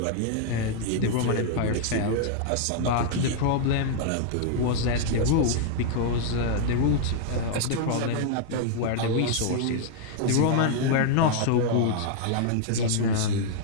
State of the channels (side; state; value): both; different; correlation 0.00